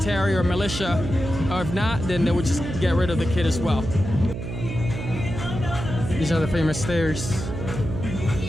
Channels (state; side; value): noise; right; hum, 6 dB below the sound